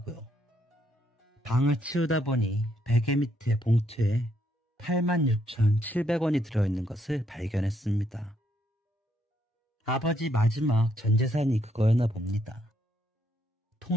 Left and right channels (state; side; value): normal; both; correlation 0.74